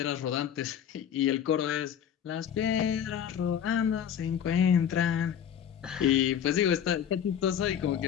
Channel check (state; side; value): quieter; right; 8.9 dB